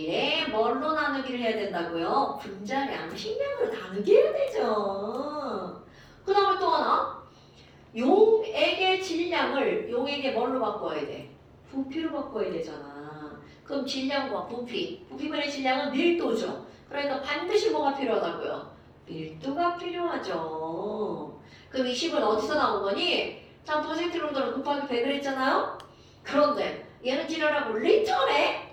뭘로 나누기를 해야 된다고요? 분자량, 식량으로 나누게 해야 되죠. 그 다음에 또 하나. 용액의 질량을 용액의 뭘로 바꿔야 돼? 부피로 바꿔야 되잖아. 그럼 질량과 부피분의 질량은 밀도죠. 그러니까 반드시 뭐가 필요하다고요? 밀도가 필요하죠. 그럼 이 식은 어디서 나온 거니? 자, 퍼센트 농도를 곱하기 100을 했잖아요? 그런데 얘는 지랄하고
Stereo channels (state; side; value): identical; both; correlation 1.00